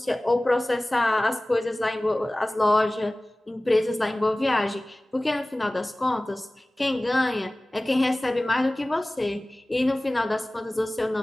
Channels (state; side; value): normal; both; correlation 0.98